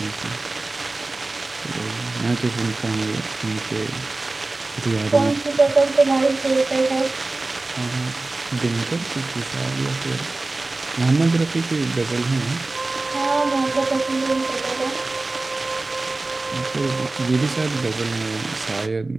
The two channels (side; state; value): left; quieter; 3.2 dB